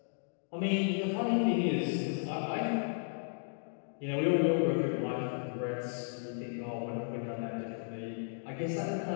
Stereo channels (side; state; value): right; silent; digital silence